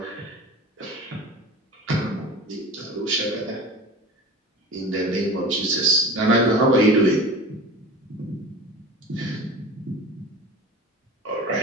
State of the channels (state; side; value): normal; both; correlation 0.36